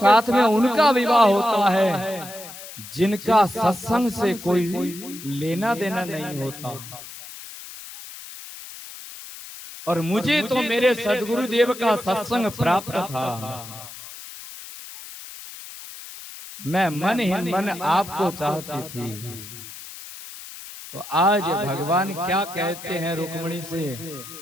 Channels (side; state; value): left; noise; hiss, 14 dB below the sound